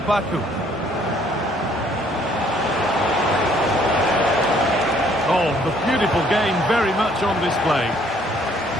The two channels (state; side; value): noise; right; hum, 25 dB below the sound